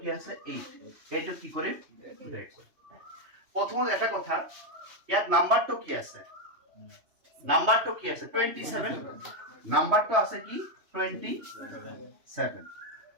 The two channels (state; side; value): late; left; 3.2 ms